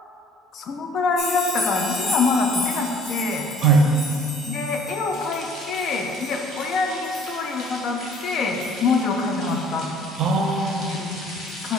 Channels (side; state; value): both; normal; correlation 0.54